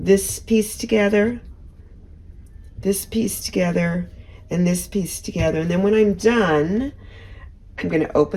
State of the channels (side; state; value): both; identical; correlation 1.00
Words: piece together, this piece together, and this piece together. And then when I'm done, I'm going to